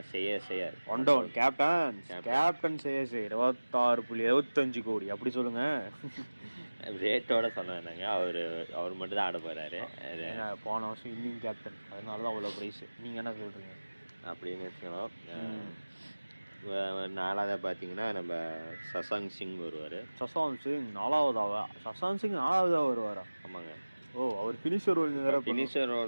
சேயர் ஒன் டவுன் கேப்டன் சேயர் 26.75 கோடி. அப்படி சொல்லுங்க, ரேட்டோட சொன்னாங்க. அவர் மட்டும் தான் ஆட போகிறாரு. போன வருஷம் இன்னிங் கேப்டன், அதனால தான் அவ்வளோ ப்ரைஸ். நீங்கள் என்ன சொல்கிறீங்க? அப்படின்னு வச்சுக்கலாம். நாலாவது பார்த்தீங்கன்னா நம்ம சசாங் சிங் வருவார். சசாங் சிங் 4ஆவதா வருவாரா? ஆமாங்க. ஓ, அவர் ஃபினிஷர்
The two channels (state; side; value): inverted; both; correlation -1.00